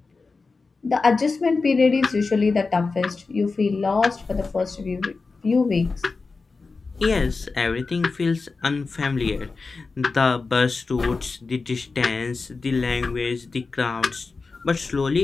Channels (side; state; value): right; quieter; 4.2 dB